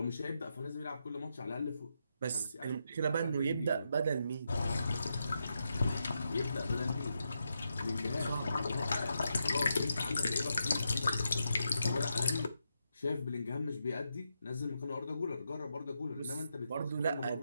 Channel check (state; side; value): inverted; both; correlation -0.84